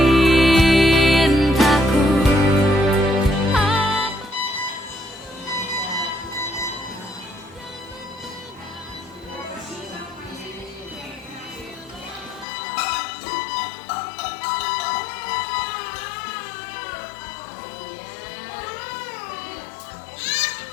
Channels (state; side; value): drops out; right; at 12.5 s